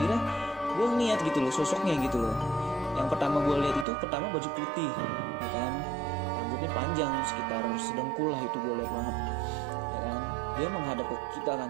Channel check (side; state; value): left; drops out; at 3.9 s